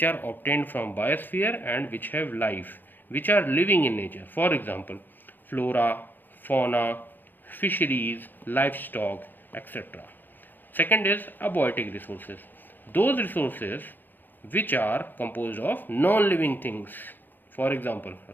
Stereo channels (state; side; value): late; right; 0.090 ms